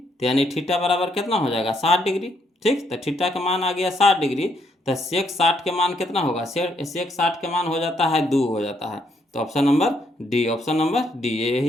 यानी थीटा बराबर कितना हो जाएगा 60 डिग्री। ठीक। तो थीटा का मान आ गया 60 डिग्री, तो सेक 60 के मान कितना होगा, सेक 60 के मान हो जाता है 2 हो जाता है। तो option number D, option number D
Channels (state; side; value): normal; both; correlation 0.73